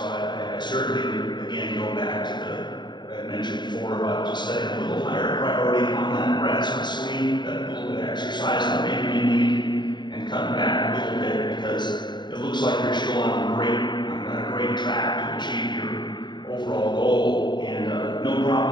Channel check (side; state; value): right; late; 0.22 ms